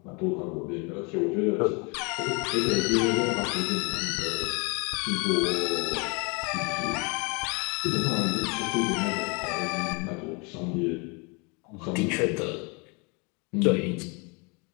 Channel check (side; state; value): right; quieter; 31.1 dB